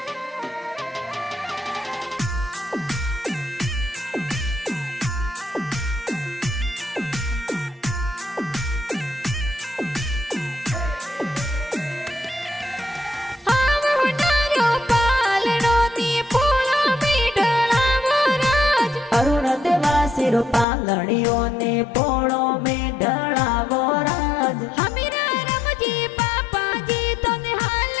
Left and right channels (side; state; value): right; drops out; at 20.7 s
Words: पांगड़ियों ने पोड़ों में ढड़ावो राज हमीरा रमजी पापा जी तो निहाल